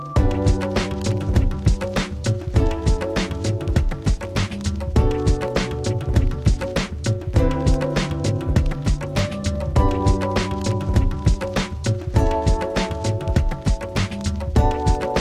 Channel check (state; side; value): identical; both; correlation 1.00